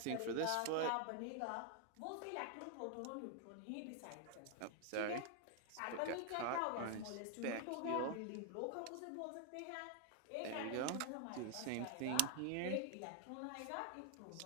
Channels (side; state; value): both; different; correlation 0.00